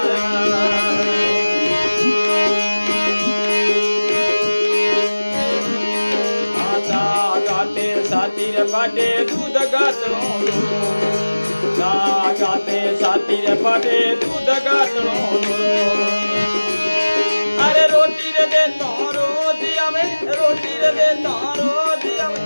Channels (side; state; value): both; inverted; correlation -1.00